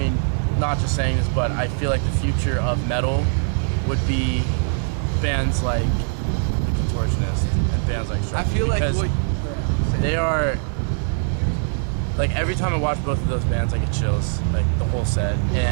not just saying this, but I feel like the future of metal would be bands like the Contortionists and bands like Structures. I feel like because they are, like, every time I watch both of those bands, I get chills, like the whole set.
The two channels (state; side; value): silent; left; 64 dB below the other